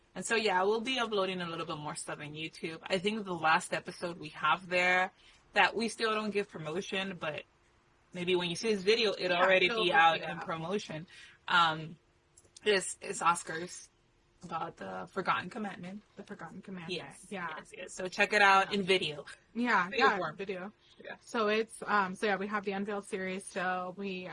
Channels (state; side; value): identical; both; correlation 1.00